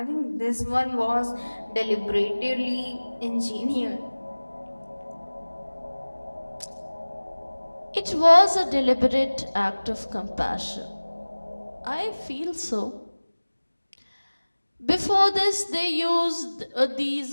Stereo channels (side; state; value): both; inverted; correlation -1.00